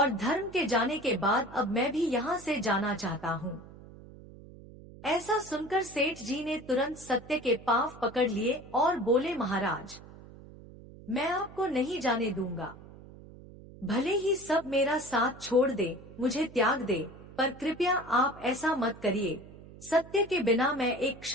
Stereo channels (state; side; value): noise; right; hum, 18 dB below the sound